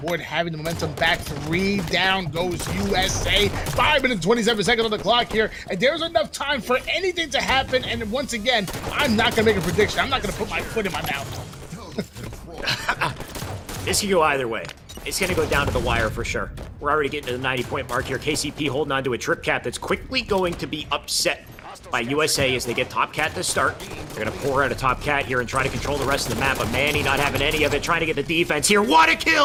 having the momentum back. 3 down goes USA. 5 minutes 27 seconds on the clock here, and there's enough time for anything to happen. And once again, I'm not gonna make a prediction. I'm not gonna put my foot in my mouth. This can go either way. It's going to go down to the wire for sure. We're already getting to the 90-point mark here. KCP holding on to a trip cap that's quickly going to be upset by USA as they get Top Cat to start. They're going to pour out a Top Cat here and try to control the rest of the map, but Manny not having any of it, trying to get the defense here. What a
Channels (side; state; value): both; identical; correlation 1.00